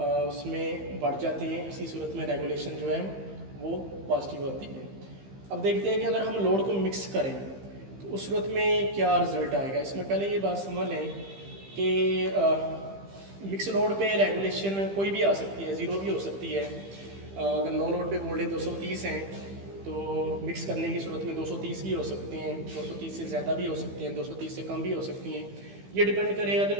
बढ़ जाती हैं। इसी सूरत में रेगुलेशन जो है वो पॉजिटिव होती है। अब देखते हैं कि अगर हम लोड को मिक्स करें तो उस सूरत में क्या रिज़ल्ट आएगा। इसमें पहले ये बात समझ लें कि मिक्स लोड पे रेगुलेशन कोई भी आ सकती है, ज़ीरो भी हो सकती है। अगर नो लोड पे वोल्टेज 230 हैं तो मिक्स करने की सूरत में 230 भी हो सकते हैं, 230 से ज़्यादा भी हो सकते हैं, 230 से कम भी हो सकती हैं। ये डिपेंड करेगा कि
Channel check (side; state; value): left; late; 15 ms